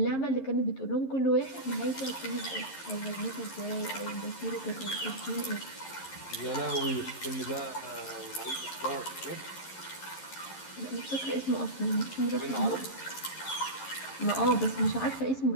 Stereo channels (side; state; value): right; late; 11 ms